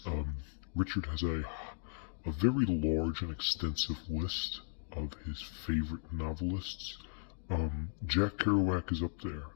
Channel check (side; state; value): right; silent; digital silence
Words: Richard has a very large and extensive list of his favorite novelists. Jack Kerouac is up there.